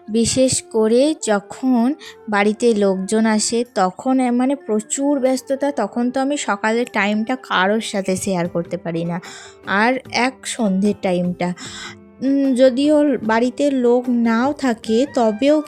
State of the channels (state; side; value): identical; both; correlation 1.00